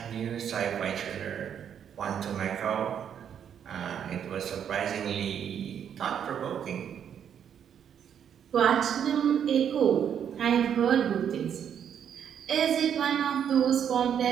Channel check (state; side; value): quieter; left; 8.7 dB